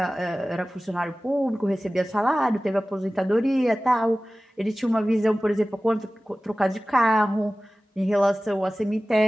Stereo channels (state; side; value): normal; both; correlation 0.97